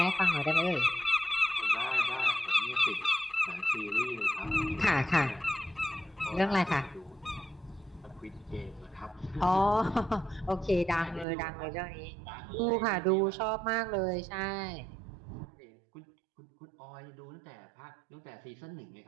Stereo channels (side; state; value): left; drops out; at 11.2 s